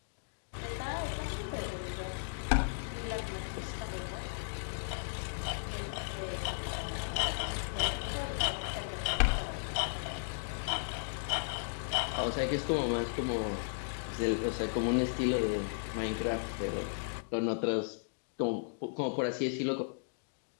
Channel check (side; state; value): right; silent; digital silence